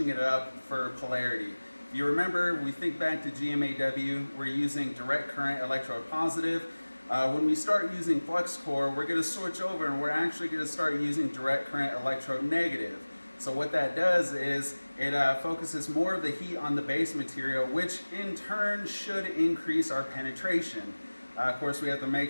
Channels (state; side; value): inverted; both; correlation -1.00